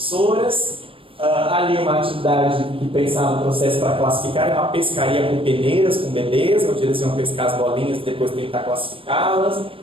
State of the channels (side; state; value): left; late; 0.26 ms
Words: Ali uma atividade que pensava no processo para classificar, é uma pescaria com peneiras, com bebês, onde eles iam pescar as bolinhas e depois tentar classificá-las.